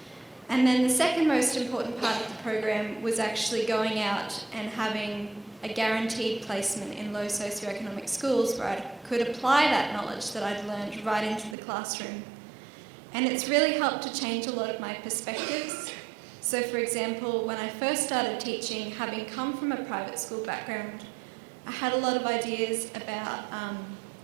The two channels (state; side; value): drops out; left; at 11.6 s